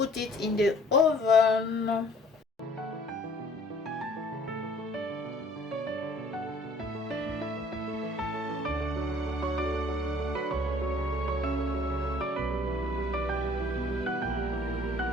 it in the oven.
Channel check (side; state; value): both; normal; correlation 0.55